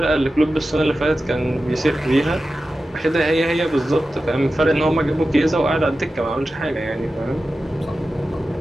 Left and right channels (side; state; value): both; normal; correlation 0.93